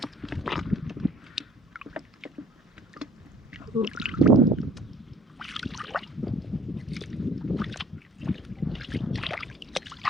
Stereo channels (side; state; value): both; normal; correlation 0.54